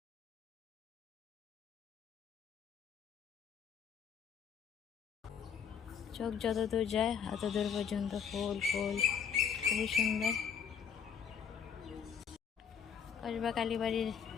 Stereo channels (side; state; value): right; quieter; 7.4 dB